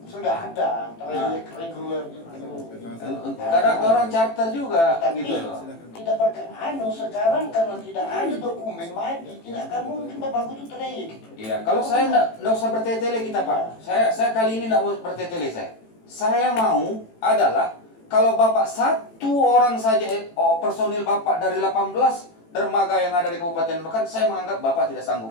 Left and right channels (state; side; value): late; right; 18 ms